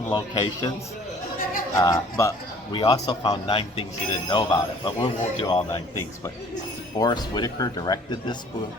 locations, but we also found 9 things you didn't know about it. But we won't do all 9 things. But Forrest Whitaker directed this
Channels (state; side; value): normal; both; correlation 0.53